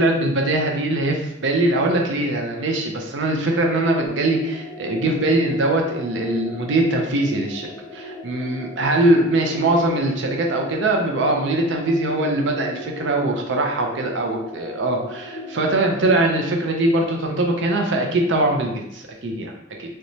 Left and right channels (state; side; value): normal; both; correlation 0.32